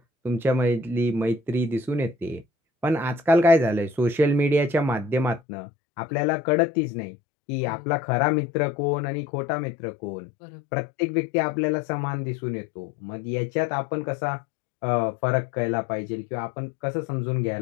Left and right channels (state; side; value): drops out; right; at 5.4 s